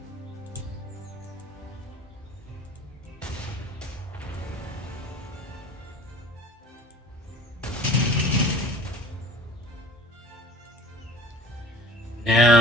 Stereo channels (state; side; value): normal; both; correlation 0.45